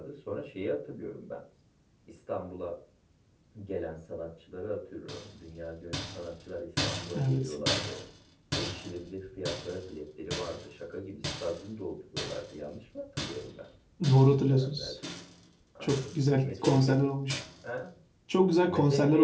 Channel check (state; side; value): identical; both; correlation 1.00